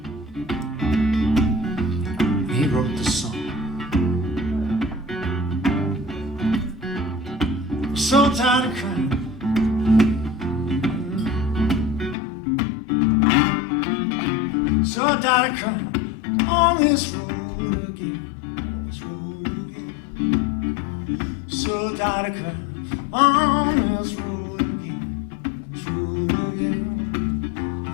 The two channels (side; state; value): right; drops out; at 12.2 s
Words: He wrote the song. So tired of crying. So tired of crying on this road again. On this road again. So tired of crying on this road again. This road